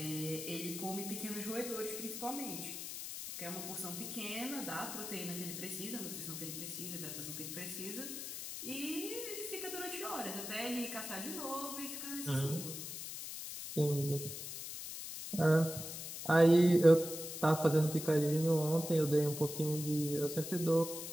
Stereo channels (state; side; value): noise; left; hiss, 7 dB below the sound